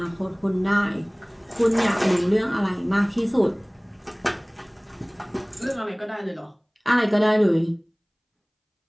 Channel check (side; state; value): both; identical; correlation 1.00